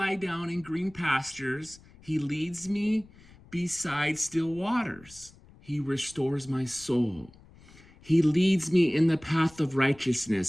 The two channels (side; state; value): left; noise; rumble, 24 dB below the sound